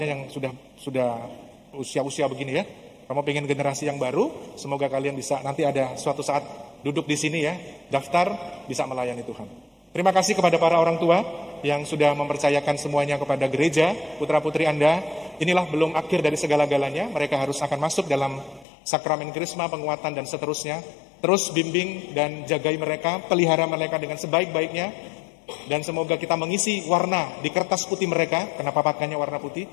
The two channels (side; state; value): right; drops out; at 18.7 s